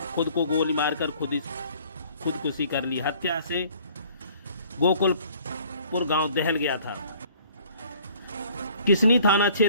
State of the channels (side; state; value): both; inverted; correlation -0.56